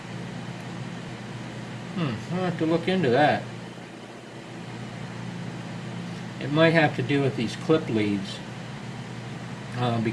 I'll have to look into that. It might have to do with these clip leads,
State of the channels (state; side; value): identical; both; correlation 1.00